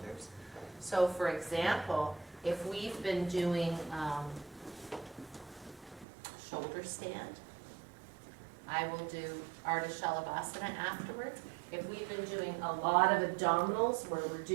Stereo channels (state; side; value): drops out; left; at 6.1 s